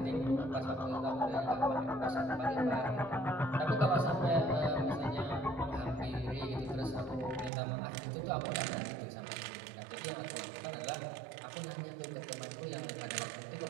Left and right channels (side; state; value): left; drops out; at 7.5 s